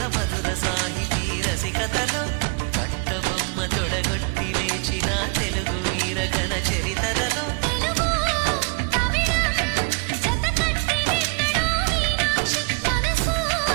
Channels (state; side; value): quieter; left; 32.9 dB